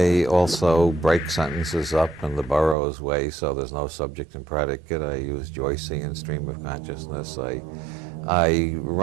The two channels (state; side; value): drops out; left; at 2.8 s